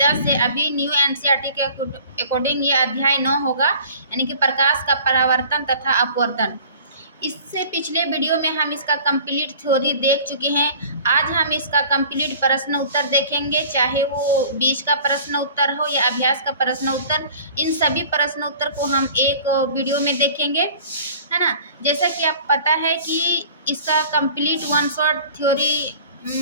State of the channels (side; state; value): both; inverted; correlation -0.46